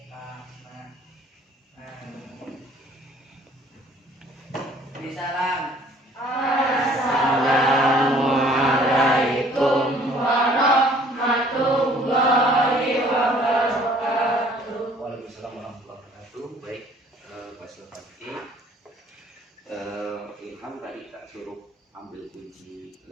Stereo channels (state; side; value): normal; both; correlation 0.56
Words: fahma. Amin. Salam. Assalamualaikum warahmatullahi wabarakatuh. Waalaikumsalam warahmatullahi wabarakatuh. Baik, Pak Silvati. Ilham tadi tak suruh ambil kunci